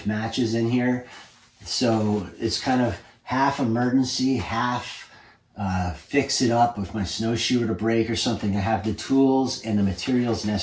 matches in here. So it's kind of half emergency, half fix it up if my snowshoe were to break or something. I have the tools and the materials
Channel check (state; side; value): identical; both; correlation 1.00